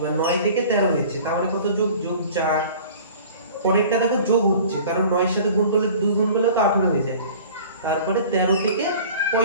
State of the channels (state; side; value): inverted; both; correlation -0.44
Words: 9 থেকে 13 হয়েছে, তাহলে কত? যোগ, যোগ 4। পরেরটা দেখো যোগ হচ্ছে, কারণ 9 এর সাথে গুণ করলে 2 গুণ করলে তো 18 হয়ে যায়। তারপরে 13 থেকে